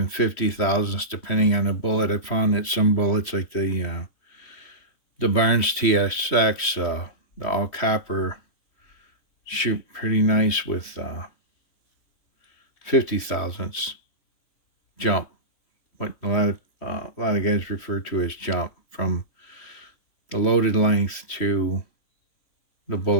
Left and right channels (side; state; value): right; late; 3.1 ms